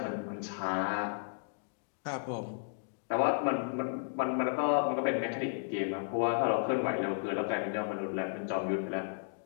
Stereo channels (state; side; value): silent; right; digital silence